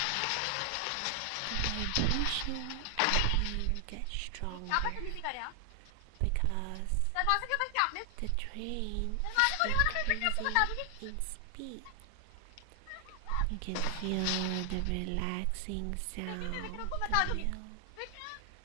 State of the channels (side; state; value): both; different; correlation 0.00